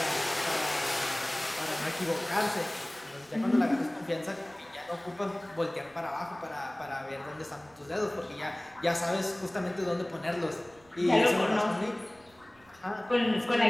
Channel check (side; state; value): right; noise; rumble, 30 dB below the sound